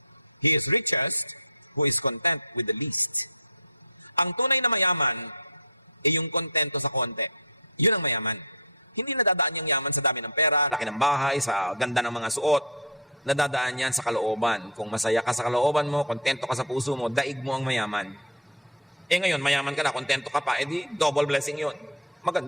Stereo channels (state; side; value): normal; both; correlation 0.06